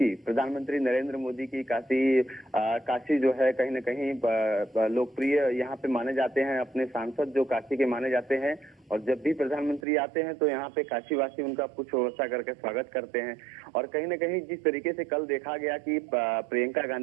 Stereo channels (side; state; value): left; drops out; at 9.8 s